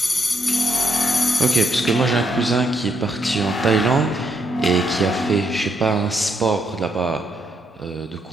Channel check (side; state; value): both; normal; correlation 0.75